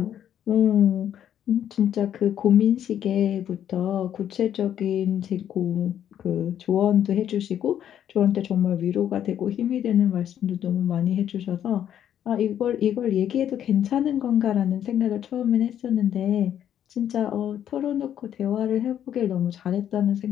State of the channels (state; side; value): quieter; right; 10.1 dB